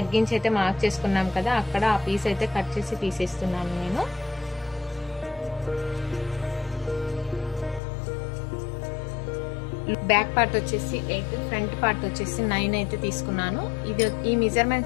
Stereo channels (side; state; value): right; drops out; at 7.8 s